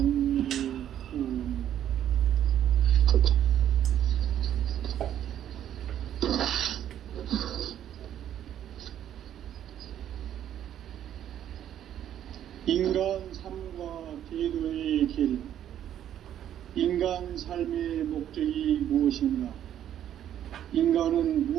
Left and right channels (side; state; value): left; quieter; 10.7 dB